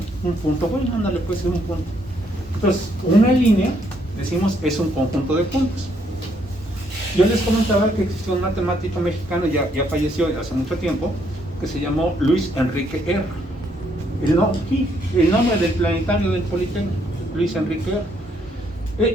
Un punto, bueno, ándale, puede ser un punto. Entonces, una línea, decimos, es un conjunto de puntos. Yo les comentaba que existió un matemático mexicano, ya falleció hace mucho tiempo, que se llamó Luis Enrique R. El nombre del planetario del Politécnico, Luis Enrique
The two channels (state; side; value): normal; both; correlation 0.71